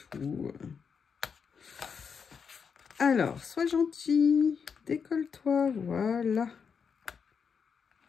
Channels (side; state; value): right; quieter; 6.3 dB